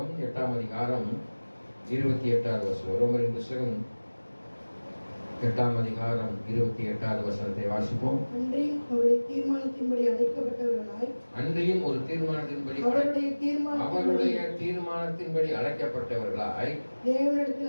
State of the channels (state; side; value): inverted; both; correlation -1.00